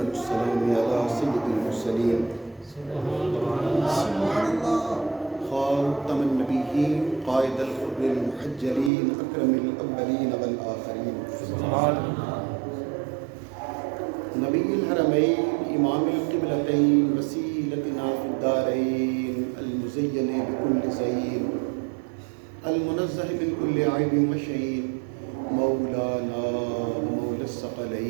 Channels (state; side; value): drops out; left; at 8.9 s